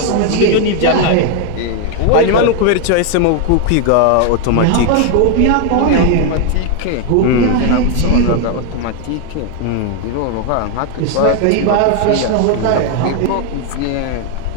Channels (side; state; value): both; different; correlation 0.01